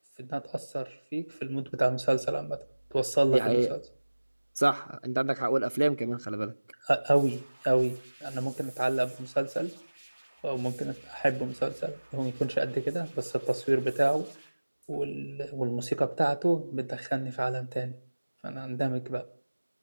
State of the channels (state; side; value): inverted; both; correlation -1.00